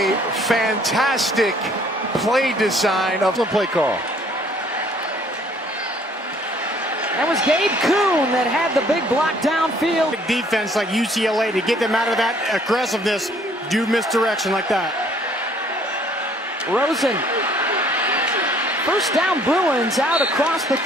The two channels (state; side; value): normal; both; correlation 0.60